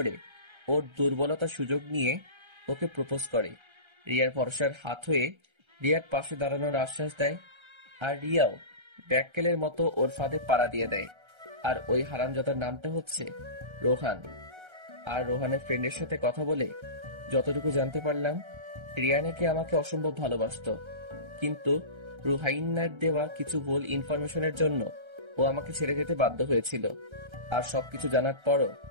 ওর দুর্বলতার সুযোগ নিয়ে ওকে প্রপোজ করে। রিয়ার ভরসার হাত হয়ে রিয়ার পাশে দাঁড়ানোর আশ্বাস দেয়। আর রিয়াও ব্যাককেলের মতো ওর ফাঁদে পাড়া দিয়ে দেয়। আর ওই হারামজাদার নামটা হচ্ছে রোহান। আর রোহানের ফ্রেন্ডের সাথে কথা বলে যতটুকু জানতে পারলাম রিয়া নাকি আমাকে অসম্ভব ভালোবাসতো, কিন্তু রুহাইন্নার দেওয়া কিছু ভুল ইনফরমেশনের জন্য ও আমাকে ছেড়ে যেতে বাধ্য হয়েছিল। আর সবকিছু জানার পরও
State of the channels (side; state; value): left; late; 1.3 ms